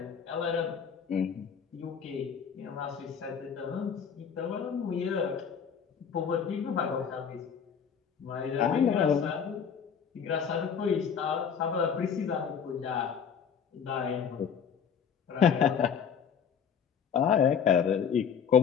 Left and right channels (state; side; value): quieter; right; 7.2 dB